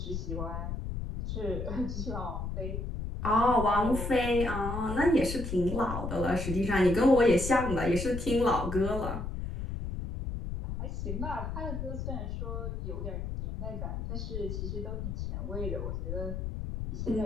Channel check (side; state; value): left; noise; rumble, 4 dB below the sound